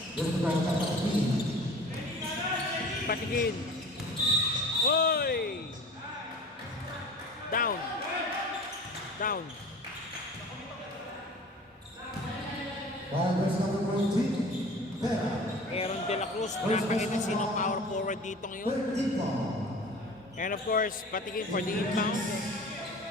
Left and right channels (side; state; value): both; normal; correlation 0.41